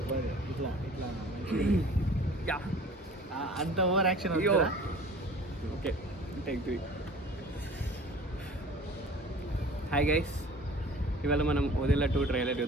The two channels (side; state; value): both; normal; correlation 0.45